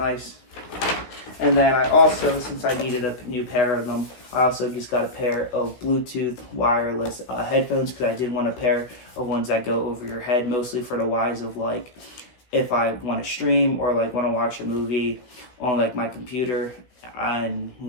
And then I also, since I needed a new pair of them, I also just got a pair of Bluetooth wireless headphones, because I did want a pair of ones that go over your head, mostly for the wise of like if I want to stream or like want to watch a movie on like my computer and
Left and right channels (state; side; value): late; right; 16 ms